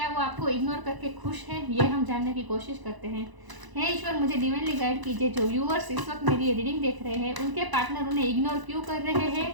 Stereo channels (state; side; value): late; left; 1.0 ms